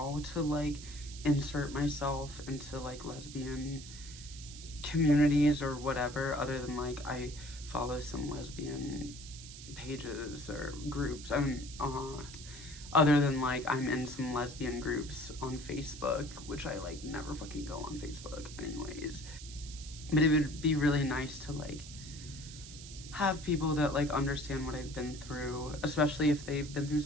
to like insert myself into like lesbian communities or whatever, other than like I follow some lesbian pages or groups. Other than like I'm in some lesbian groups on Facebook, which I like never fucking go on Facebook anyways. But it would be really nice to like have people that like understand what I've been through, especially if they've been through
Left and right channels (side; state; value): right; noise; hiss, 14 dB below the sound